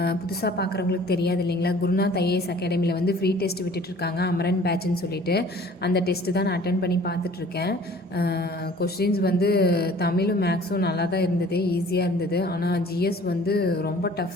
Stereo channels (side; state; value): both; normal; correlation 0.50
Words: புதுசாக பார்க்குறவங்களுக்கு தெரியாது இல்லைங்களா, குருநாத் ஐஏஎஸ் அகாடமியில் வந்து ஃப்ரீ டெஸ்ட் விட்டுட்ருக்காங்க, அமரன் பேட்ச்னு சொல்லிட்டு. அந்த டெஸ்ட்டு தான் நான் அட்டன் பண்ணி பார்த்துட்ருக்கேன். கொஷின்ஸ் வந்து தமிழும் மேக்ஸும் நல்லா தான் இருந்தது, ஈஸியாக இருந்தது. ஆனால் ஜிஎஸ் வந்து ரொம்ப